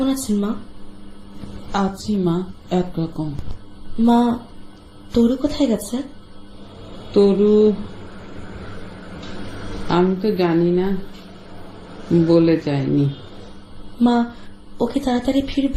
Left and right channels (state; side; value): identical; both; correlation 1.00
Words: আছেন মা? আছি মা, একরকম। মা তরু কোথায় গেছে? তরু আমি তো জানি না, বলে যায়নি। মা ওকে তাড়াতাড়ি